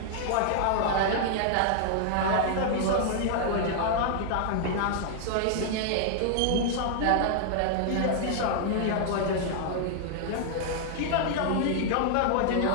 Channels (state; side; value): different; both; correlation -0.01